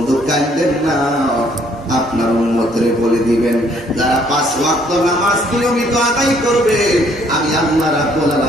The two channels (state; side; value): normal; both; correlation 0.64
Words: কান্দেন না, আপনার উম্মতরে বলে দিবেন, যারা 5 ওয়াক্ত নামাজ নিয়মিত আদায় করবে, আমি আল্লাহ রাব্বুল